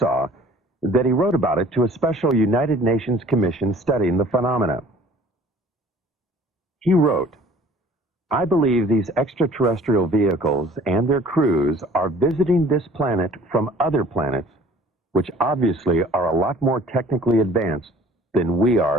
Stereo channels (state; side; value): normal; both; correlation 0.51